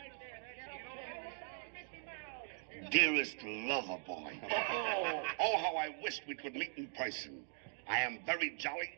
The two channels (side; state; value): left; silent; digital silence